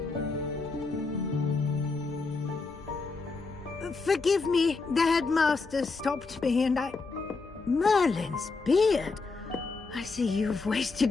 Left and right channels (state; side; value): quieter; right; 4.1 dB